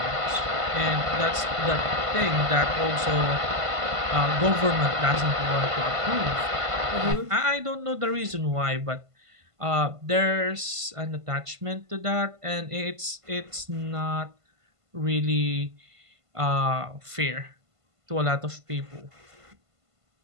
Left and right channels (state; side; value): late; left; 1.5 ms